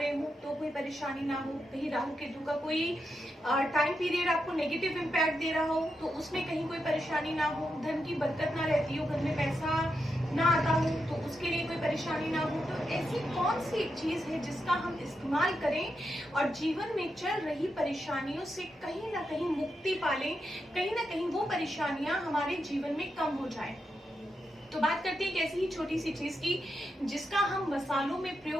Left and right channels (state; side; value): normal; both; correlation 0.86